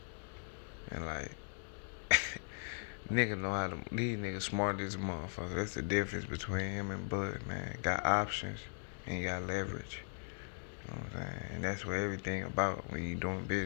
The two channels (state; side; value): silent; right; digital silence